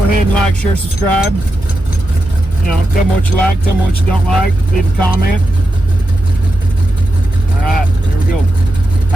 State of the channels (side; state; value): both; normal; correlation 0.88